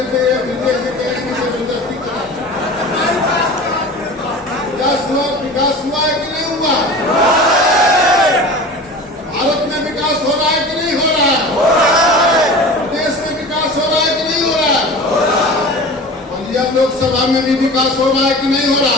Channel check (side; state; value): both; normal; correlation 0.36